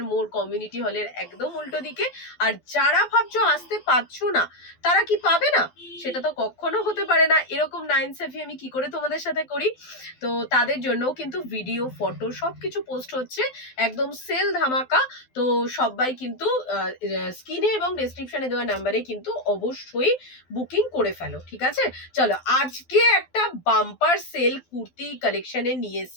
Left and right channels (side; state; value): right; late; 12 ms